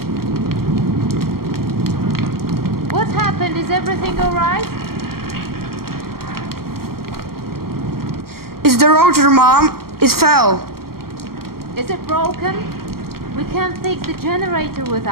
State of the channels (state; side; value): late; left; 0.94 ms